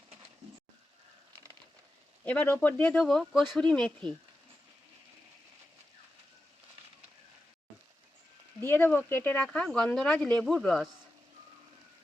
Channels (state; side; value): normal; both; correlation 0.91